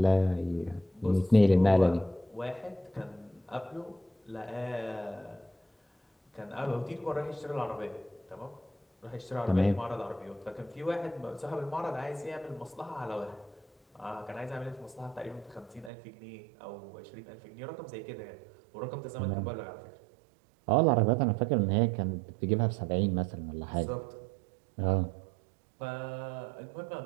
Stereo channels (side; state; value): left; drops out; at 15.9 s